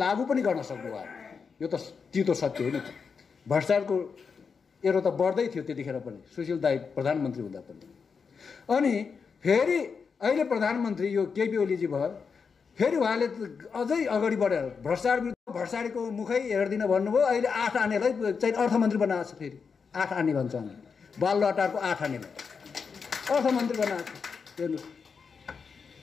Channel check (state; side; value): quieter; right; 5.6 dB